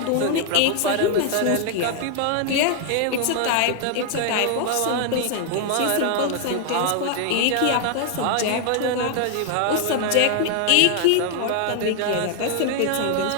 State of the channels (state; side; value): different; both; correlation 0.00